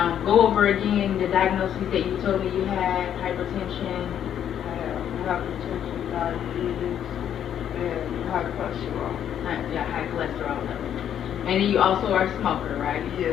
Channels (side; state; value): right; quieter; 9.7 dB